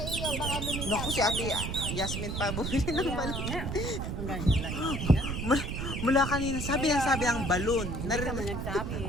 iyo. Baka lumipad. Naku, si Ate Yasmin pa bumili ng balon. Mula kanina, sabi ng balon. Hindi ka man nagsabi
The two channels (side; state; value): right; noise; rumble, 3 dB below the sound